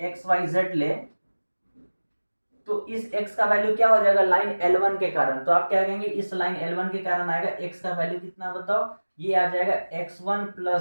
x y z ले, तो इस x का वैल्यू क्या हो जाएगा लाइन L1 के कारण। तो आप क्या कहेंगे, इस लाइन L1 के कारण आएगा x का वैल्यू कितना बताओ, ये आ जाएगा x1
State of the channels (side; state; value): both; inverted; correlation -1.00